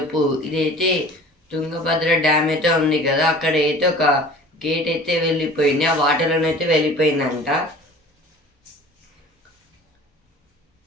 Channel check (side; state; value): both; normal; correlation 0.44